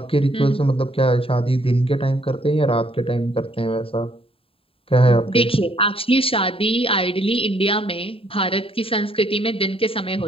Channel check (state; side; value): late; right; 0.27 ms